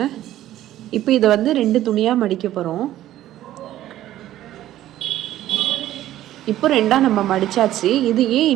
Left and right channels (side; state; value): left; quieter; 13.5 dB